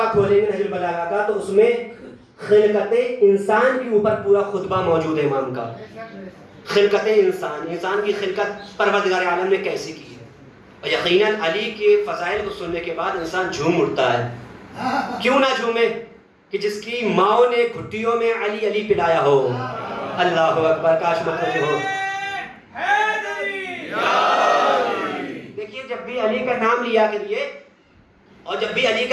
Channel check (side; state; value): both; identical; correlation 1.00